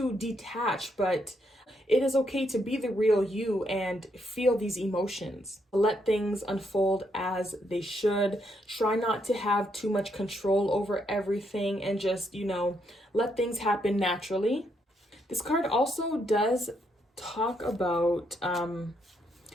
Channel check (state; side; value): normal; both; correlation 0.76